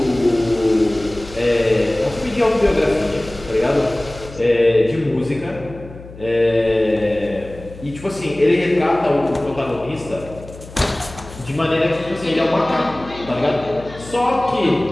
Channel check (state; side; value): noise; left; hum, 17 dB below the sound